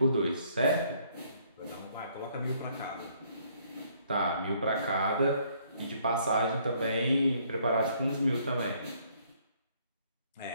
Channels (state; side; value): inverted; both; correlation -0.65